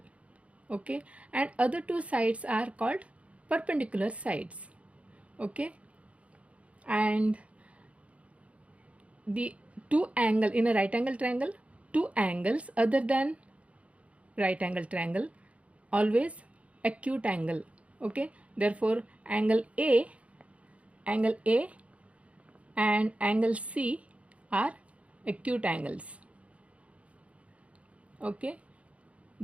Okay, and other two sides are called perpendicular sides. Okay, and the two angle in a right angle triangle, two angles other than right angle triangle always acute angle. Okay, therefore angle A and angle C are acute angles. Okay,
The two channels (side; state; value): left; late; 0.064 ms